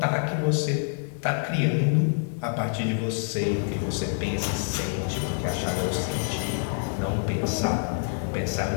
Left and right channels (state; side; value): silent; right; digital silence